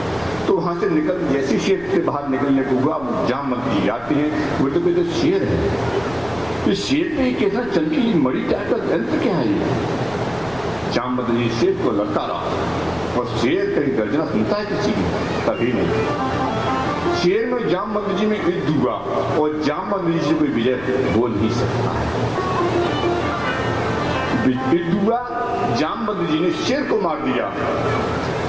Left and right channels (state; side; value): noise; left; rumble, 21 dB below the sound